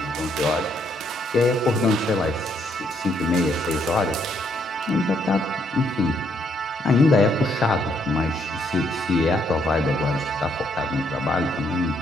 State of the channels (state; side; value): normal; both; correlation 0.72